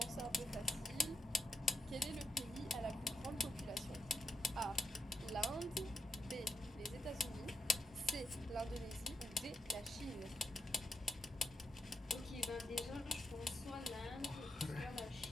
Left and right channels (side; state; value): both; normal; correlation 0.83